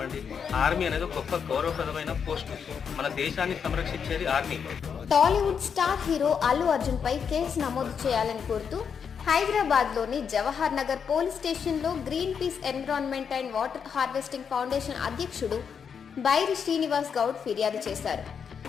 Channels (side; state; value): right; quieter; 6.9 dB